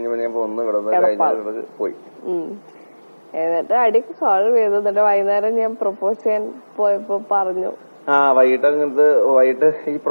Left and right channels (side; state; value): both; inverted; correlation -1.00